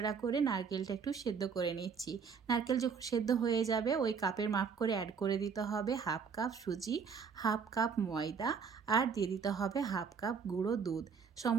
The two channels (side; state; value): left; quieter; 6.0 dB